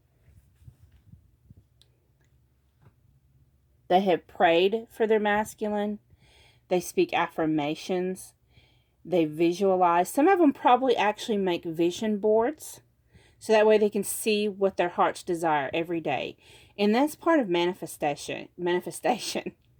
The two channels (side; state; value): both; identical; correlation 1.00